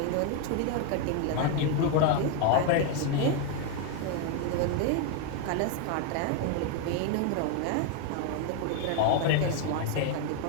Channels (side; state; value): both; different; correlation 0.01